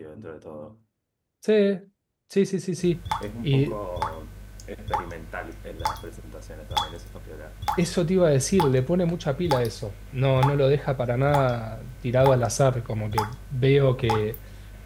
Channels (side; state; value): both; identical; correlation 1.00